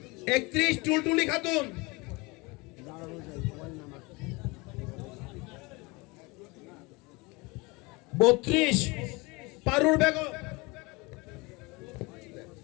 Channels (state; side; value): quieter; right; 25.7 dB